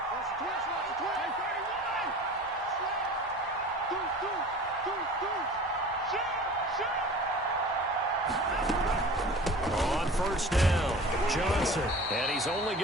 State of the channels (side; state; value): both; normal; correlation 0.40